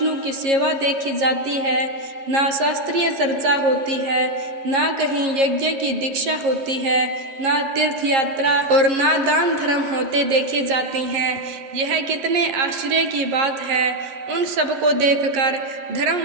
की सेवा देखी जाती है, ना शास्त्रीय चर्चा होती है, ना कहीं यज्ञ की दीक्षा होती है, ना तीर्थ यात्रा और ना दान धर्म होते देखे जाते हैं। यह कितने आश्चर्य की बात है। उन सबको देखकर धर्म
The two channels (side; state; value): left; late; 11 ms